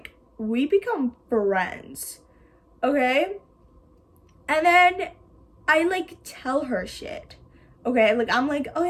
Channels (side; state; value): both; identical; correlation 1.00